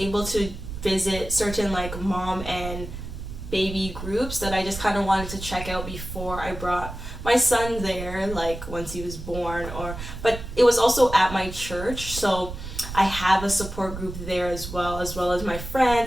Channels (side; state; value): right; noise; rumble, 9 dB below the sound